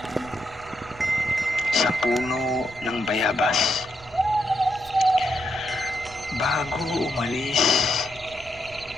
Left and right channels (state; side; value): noise; right; rumble, 21 dB below the sound